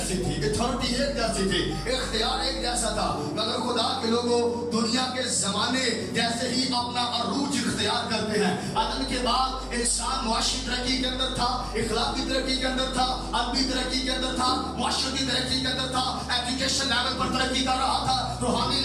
تھی, اتھارٹی ایک جیسی تھی, اختیار ایک جیسا تھا. مگر خدا کے لوگوں دنیا کے زمانے جیسے ہی اپنا عروج اختیار کرتے ہیں. آدم کے بعد انسان معاشی ترقی کے اندر تھا, اخلاقی ترقی کے اندر تھا, ادبی ترقی کے اندر تھا, معاشرتی ترقی کے اندر تھا, ایجوکیشن لیول پر ترقی کر رہا تھا, روحانی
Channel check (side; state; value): both; identical; correlation 1.00